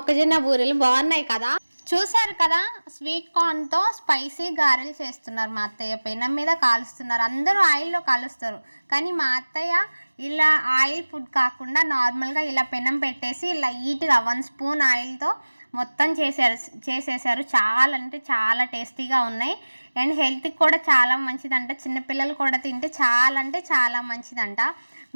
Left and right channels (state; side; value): inverted; both; correlation -1.00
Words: బూరెలు బాగున్నాయి కదా. చూసారు కదా, స్వీట్ కార్న్తో స్పైసీ గారెలు చేస్తున్నారు మా అత్తయ్య. పెనం మీద కాలుస్తున్నారు. అందరూ ఆయిల్లో కాలుస్తారు, కానీ మా అత్తయ్య ఇలా ఆయిల్ ఫుడ్ కాకుండా నార్మల్గా ఇలా పెనం పెట్టేసి లైట్గా 1 స్పూన్ ఆయిల్తో మొత్తం చేసేసారు. చాలా అంటే చాలా టేస్టీగా ఉన్నాయి. అండ్ హెల్త్కి కూడా చాలా మంచిదంట. చిన్నపిల్లలు కూడా తింటే చాలా అంటే చాలా మంచిదంట.